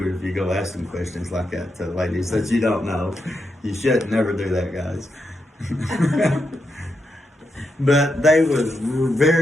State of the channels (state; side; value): normal; both; correlation 0.84